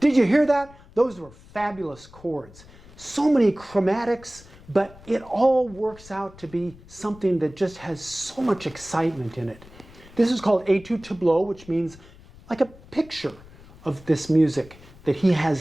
Did you hear that? Those were fabulous chords. So many chromatics, but it all works out to be something that just has so much excitement in it. This is called Études-Tableaux, which means like a picture of this music that he has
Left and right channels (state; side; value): noise; left; rumble, 22 dB below the sound